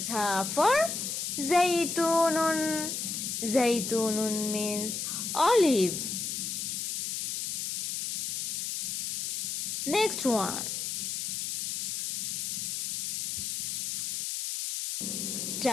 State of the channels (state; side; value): noise; left; hiss, 2 dB below the sound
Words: for zaytunun. Zaytunun means olive. Next one.